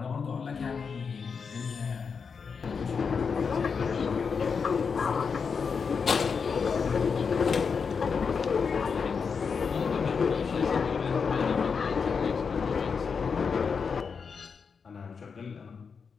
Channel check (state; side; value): quieter; right; 5.7 dB